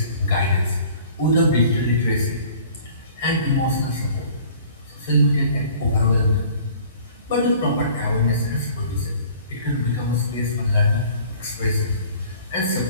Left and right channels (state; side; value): inverted; both; correlation -0.50